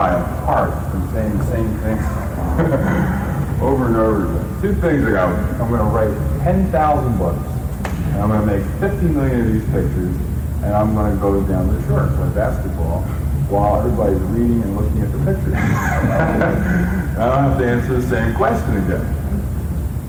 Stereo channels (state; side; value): identical; both; correlation 1.00